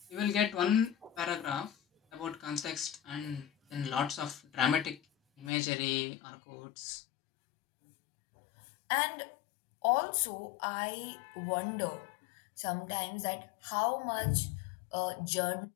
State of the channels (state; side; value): drops out; right; at 5.5 s